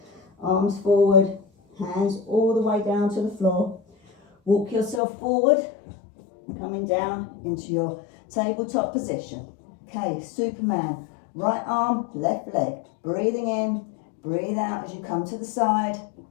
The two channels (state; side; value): drops out; right; at 5.0 s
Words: arms forward, hands all the way down to the floor. Walk yourself forward, coming down into your tabletop position. Okay, Superman. Right arm, left leg. Breathing in, breathe out as you come to the side.